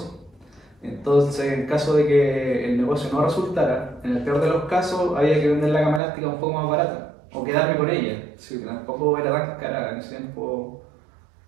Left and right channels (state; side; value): drops out; left; at 6.0 s